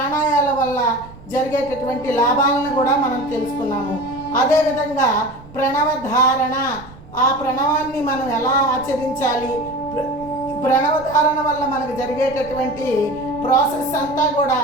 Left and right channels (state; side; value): noise; right; rumble, 20 dB below the sound